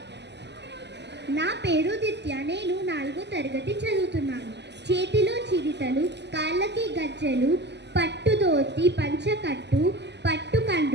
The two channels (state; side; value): late; left; 0.50 ms